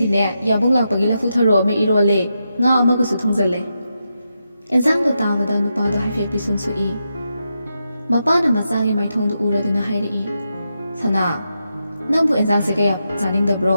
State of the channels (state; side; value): inverted; both; correlation -0.86